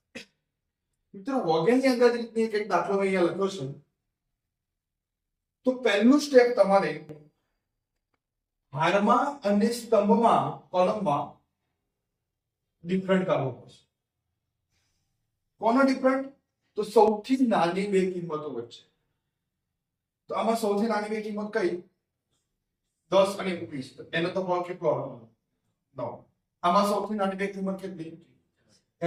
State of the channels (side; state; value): both; identical; correlation 1.00